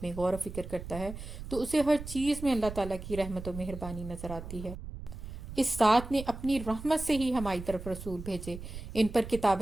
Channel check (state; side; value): noise; right; rumble, 10 dB below the sound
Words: میں غور و فکر کرتا ہے تو اسے ہر چیز میں اللہ تعالیٰ کی رحمت و مہربانی نظر آتی ہے. اس ذات نے اپنی رحمت سے ہی ہماری طرف رسول بھیجے, ان پر